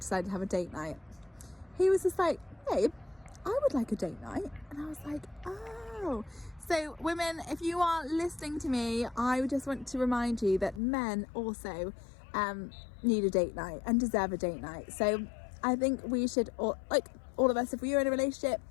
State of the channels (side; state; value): right; drops out; at 10.8 s